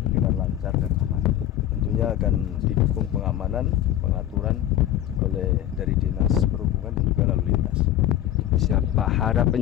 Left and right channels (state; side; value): quieter; right; 12.2 dB